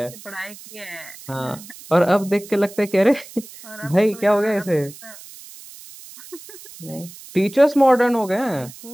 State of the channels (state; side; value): noise; right; hiss, 18 dB below the sound